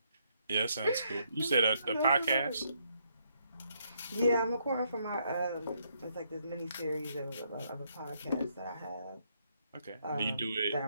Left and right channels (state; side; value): inverted; both; correlation -0.74